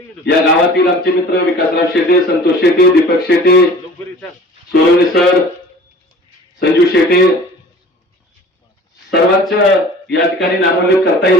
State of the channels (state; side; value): normal; both; correlation 0.45